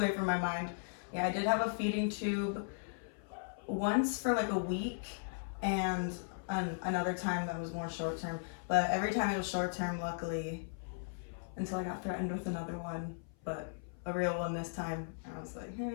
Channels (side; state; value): right; silent; 53 dB below the other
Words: from my mind. Yeah, I did have a feeding tube once for like a week, and another time that was more short term. But every time it was short term, luckily, until I got threatened with another one, but a real one this time. I was like,